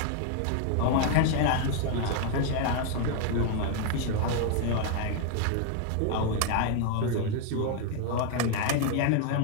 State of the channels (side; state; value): both; different; correlation 0.00